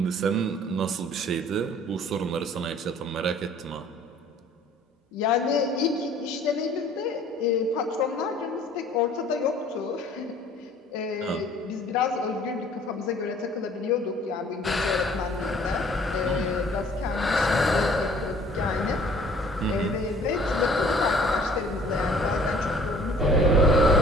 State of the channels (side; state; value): both; normal; correlation 0.54